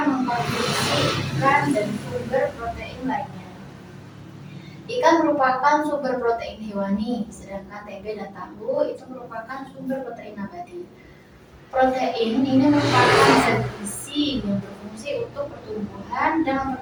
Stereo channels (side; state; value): both; identical; correlation 1.00